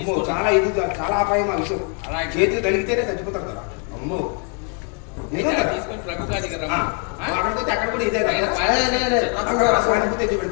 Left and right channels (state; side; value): quieter; right; 37.2 dB